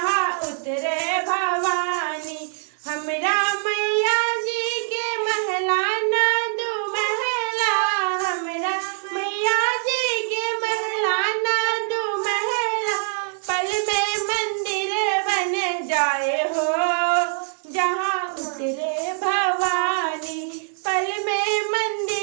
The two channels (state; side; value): silent; left; 63 dB below the other